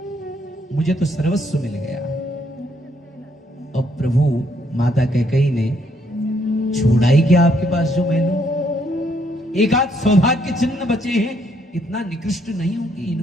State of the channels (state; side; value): normal; both; correlation 0.71